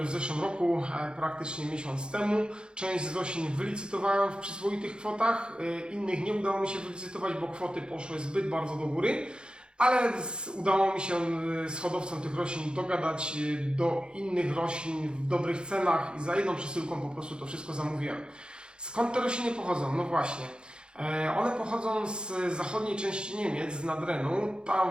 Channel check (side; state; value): left; late; 0.050 ms